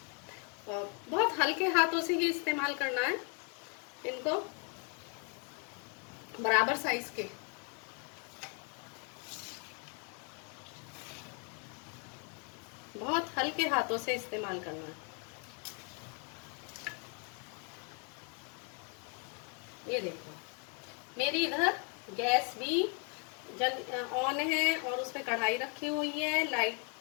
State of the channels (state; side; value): quieter; right; 37.7 dB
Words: और बहुत हल्के हाथों से ही इस्तेमाल करना है इनको, बराबर साइज के। बहुत हल्के हाथों से इस्तेमाल करना है। ये देखो, मेरी इधर गैस भी ऑन है और उसमें कढ़ाई रखी हुई है। लाइट